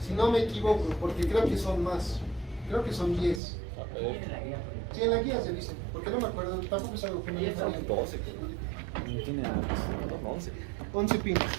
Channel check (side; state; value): left; drops out; at 3.4 s